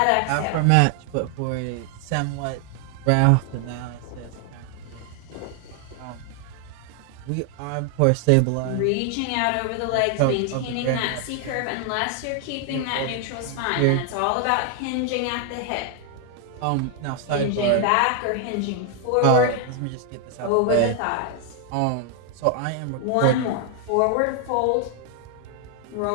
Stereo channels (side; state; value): both; different; correlation 0.00